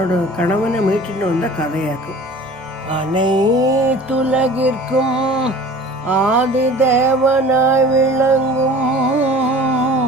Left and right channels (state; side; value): normal; both; correlation 0.44